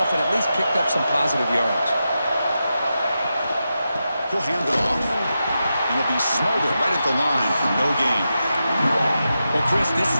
off and at least picked up some positive yards. He'll hand it off, and he'll be smothered right at the line for no gain. Well, Chris, this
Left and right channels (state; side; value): inverted; both; correlation -0.89